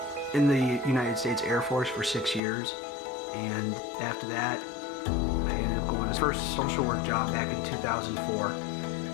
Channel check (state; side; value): drops out; right; at 2.4 s